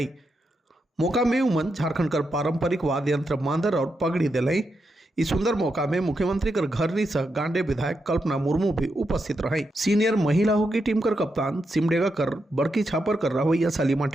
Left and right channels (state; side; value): normal; both; correlation 0.85